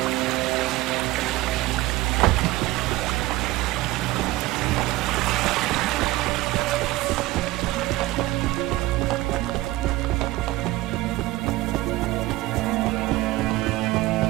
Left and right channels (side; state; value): left; quieter; 18.1 dB